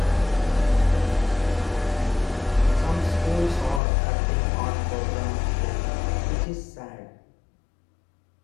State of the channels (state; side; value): drops out; right; at 3.8 s